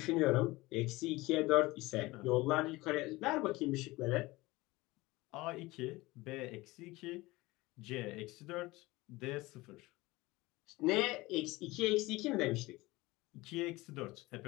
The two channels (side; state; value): right; quieter; 20.7 dB